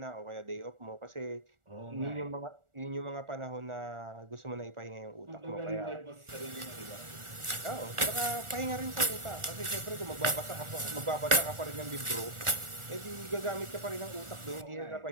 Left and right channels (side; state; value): left; late; 1.4 ms